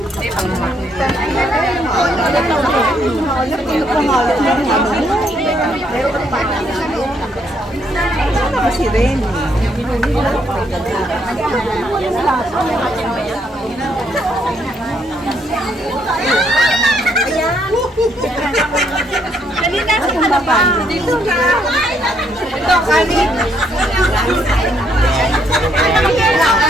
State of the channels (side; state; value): both; normal; correlation 0.72